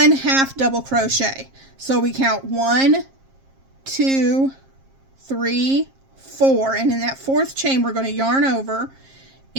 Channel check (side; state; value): left; late; 7.5 ms